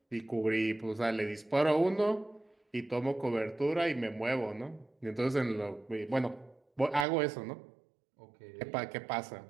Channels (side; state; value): left; drops out; at 7.1 s